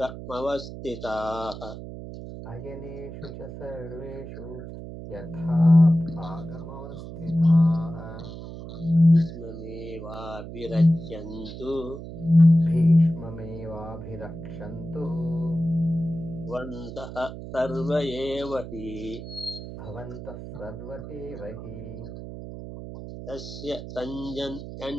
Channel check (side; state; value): right; noise; hum, 11 dB below the sound